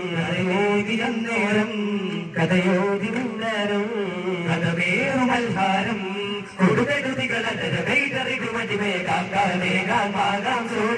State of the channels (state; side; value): identical; both; correlation 1.00